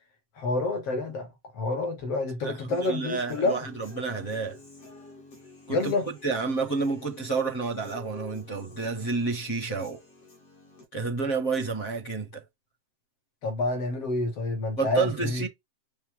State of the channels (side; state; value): right; late; 7.6 ms